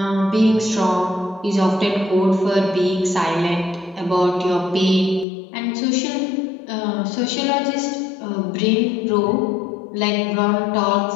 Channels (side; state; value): right; drops out; at 5.2 s